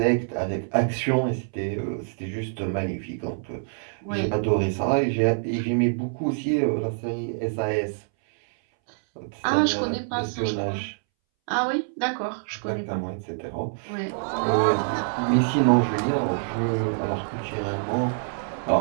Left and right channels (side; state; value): left; silent; 61 dB below the other